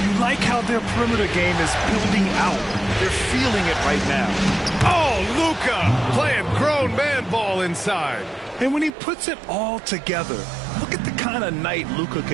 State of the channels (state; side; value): drops out; left; at 8.9 s